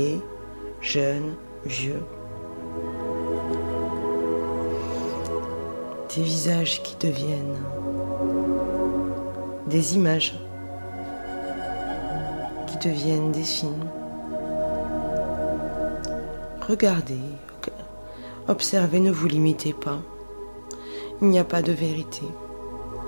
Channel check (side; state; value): both; inverted; correlation -1.00